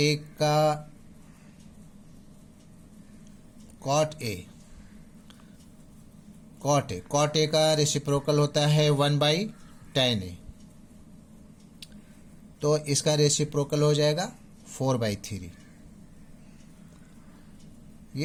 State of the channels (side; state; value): both; identical; correlation 1.00